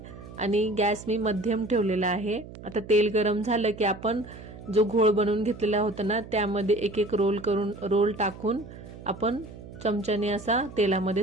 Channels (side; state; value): right; noise; hum, 15 dB below the sound